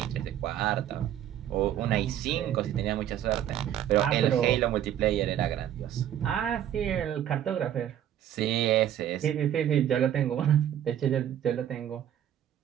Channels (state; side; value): quieter; left; 10.8 dB